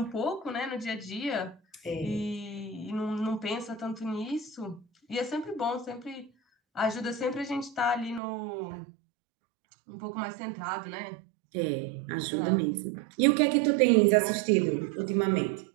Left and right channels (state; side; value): drops out; left; at 8.2 s